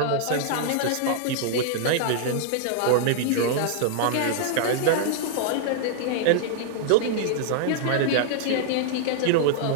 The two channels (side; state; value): both; different; correlation -0.01